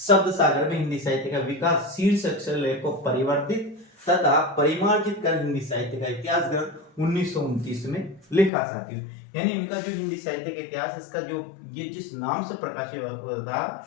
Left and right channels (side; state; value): right; drops out; at 8.5 s